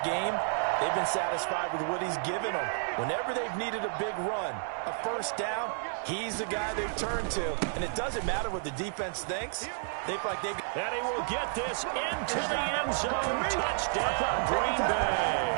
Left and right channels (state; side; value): silent; left; digital silence